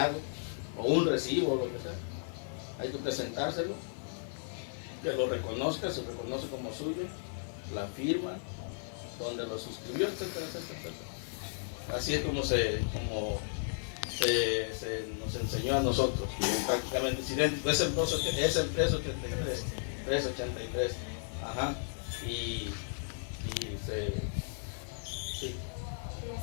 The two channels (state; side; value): silent; right; 55 dB below the other